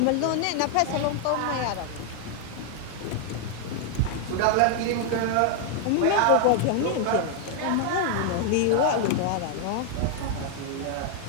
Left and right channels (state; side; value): different; both; correlation 0.00